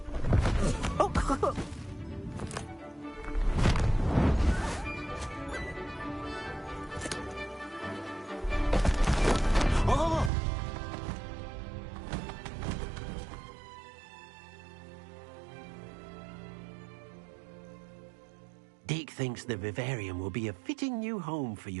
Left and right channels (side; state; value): left; drops out; at 10.3 s